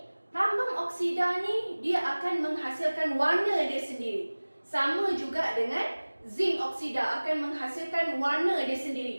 Plumbum oksida ni dia akan menghasilkan warna dia sendiri. Sama juga dengan zinc oksida akan menghasilkan warna dia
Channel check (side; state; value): both; inverted; correlation -1.00